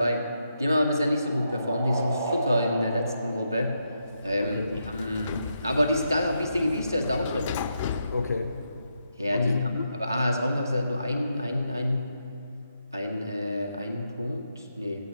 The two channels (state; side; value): inverted; both; correlation -0.82